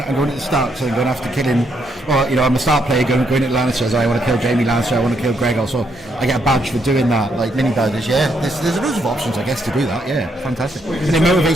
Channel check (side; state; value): both; normal; correlation 0.75